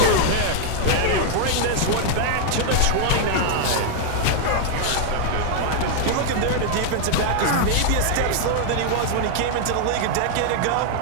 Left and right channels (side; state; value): both; different; correlation 0.00